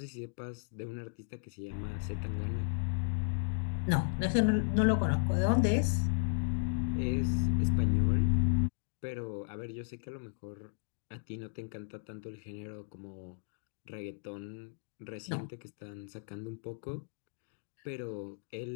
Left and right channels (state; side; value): silent; right; digital silence